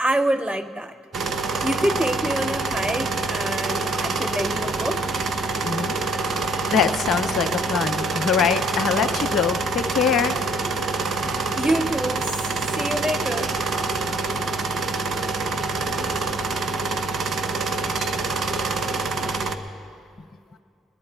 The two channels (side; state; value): both; normal; correlation 0.63